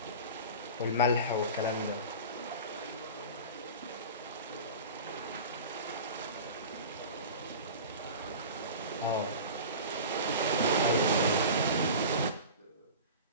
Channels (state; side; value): inverted; both; correlation -0.34